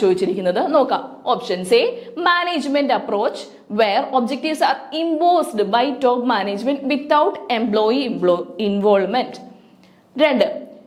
ചോദിച്ചിരിക്കുന്നത്. നോക്കാം. Options A, management approach where objectives are imposed by top management without employee involvement. 2,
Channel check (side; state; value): both; identical; correlation 1.00